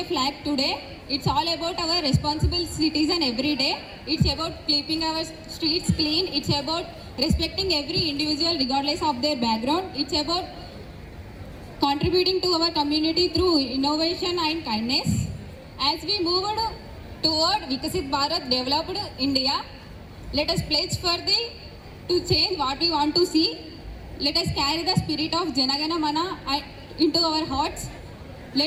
flag today. It's all about our responsible citizen every day. It's about keeping our streets clean. It's about respecting every individual regardless of their background. It's about contributing to our community through innovation and kindness. As we move toward Vikasit Bharat, developed India, let us pledge to change what we want to see. Let us carry the spirit of Jana Gana Mana into our hearts.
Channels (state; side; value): identical; both; correlation 1.00